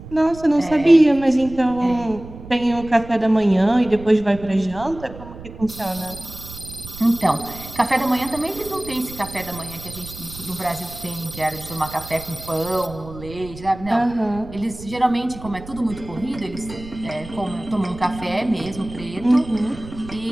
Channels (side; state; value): right; noise; rumble, 15 dB below the sound